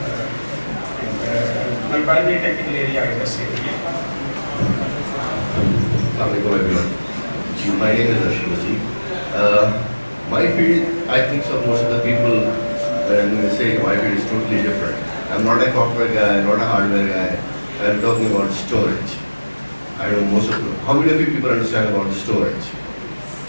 My primary technical area is SSUET. Assalamualaikum everyone. My name is Ashwin. My field, I think so most of the people, when they say my field is totally different. I'm not a software guy, not a hardware guy. I'm talking about storage. I know most of them. How many of you people understand about storage?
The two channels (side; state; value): both; inverted; correlation -1.00